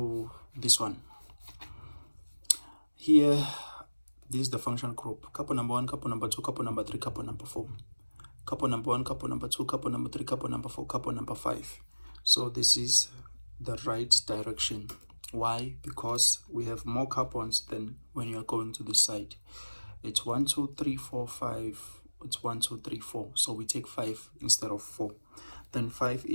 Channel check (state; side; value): inverted; both; correlation -1.00